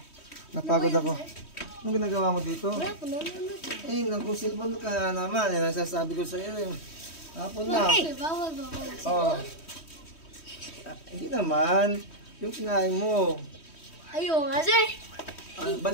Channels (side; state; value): right; late; 3.1 ms